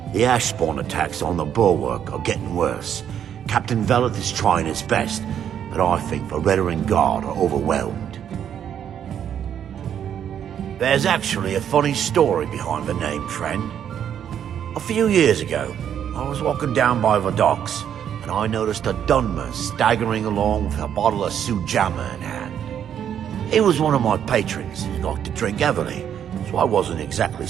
The Ashspawn attacks on the bulwark are getting worse. Captain Veleth is trying his best, but I think the Redoran Guard are overwhelmed. There's actually a funny story behind the name, friend. A few years ago, I was walking down by the docks, and I noticed a Dunmer staggering along with a bottle of Sioux jammer in hand. He was one of my patrons and liked to drink heavily, so I wasn't exactly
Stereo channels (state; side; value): quieter; left; 9.2 dB